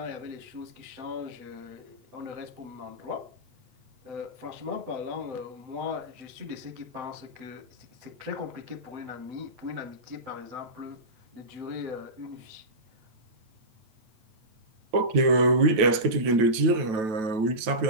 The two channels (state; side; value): late; left; 9.1 ms